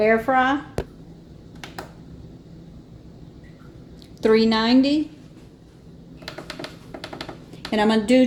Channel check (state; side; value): identical; both; correlation 1.00